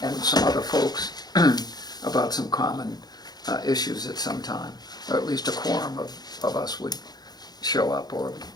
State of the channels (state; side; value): late; right; 0.19 ms